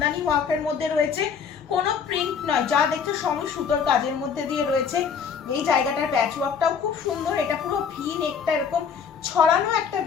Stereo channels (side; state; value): right; quieter; 6.6 dB